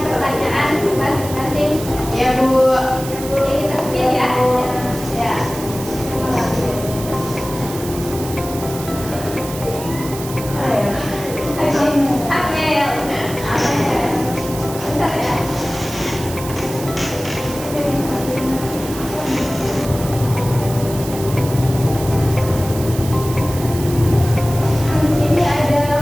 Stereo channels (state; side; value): noise; right; hiss, 12 dB below the sound